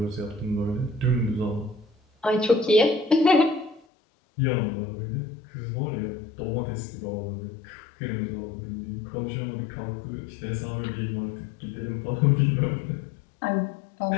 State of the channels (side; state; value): right; drops out; at 3.8 s